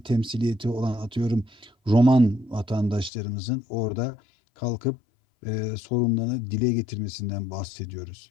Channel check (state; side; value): drops out; right; at 3.1 s